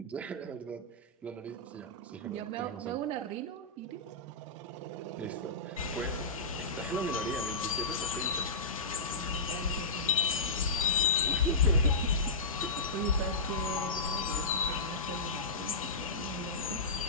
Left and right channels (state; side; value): quieter; right; 3.2 dB